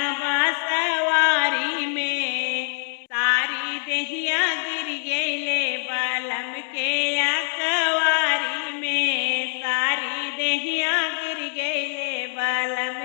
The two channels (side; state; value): right; silent; 61 dB below the other